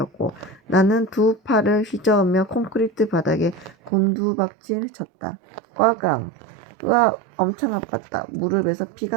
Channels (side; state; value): left; drops out; at 3.9 s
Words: 나는 두 팔을 휘저으며 콘크리트 바닥에 곤두박질 쳤다. 꽈강. 으아, 엄청 아팠다. 무릎에서